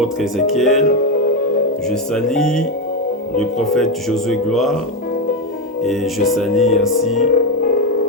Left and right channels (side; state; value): both; normal; correlation 0.10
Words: Ézéchiel. Je salue le prophète Josué Gloire. Et je salue ainsi